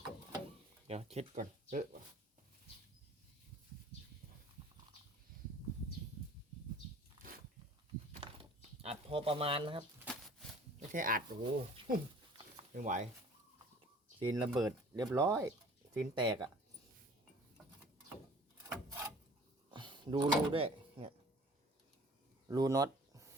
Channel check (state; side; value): normal; both; correlation 0.49